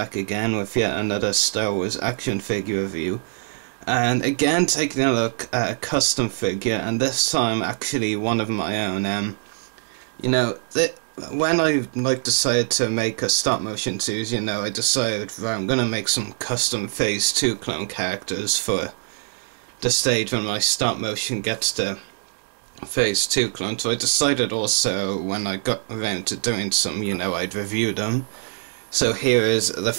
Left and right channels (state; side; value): silent; left; digital silence